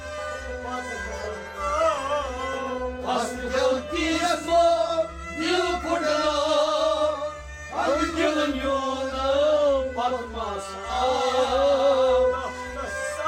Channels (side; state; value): both; identical; correlation 1.00